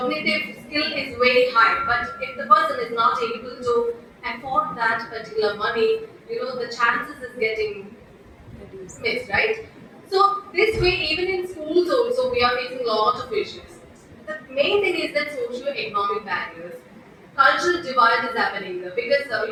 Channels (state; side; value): identical; both; correlation 1.00